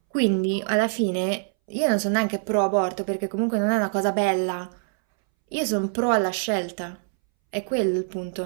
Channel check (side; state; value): left; silent; 62 dB below the other